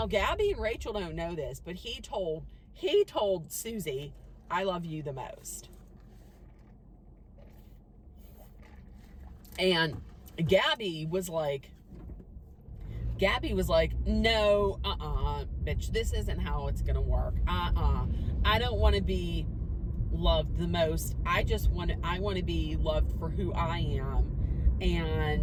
Gabby and Rachel don't know this, but he told Susie I love you the most. And Gabby was like, no, bitch, this isn't how it's gonna work. I don't want to be loved the most. I want to be loved for who I am,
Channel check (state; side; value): identical; both; correlation 1.00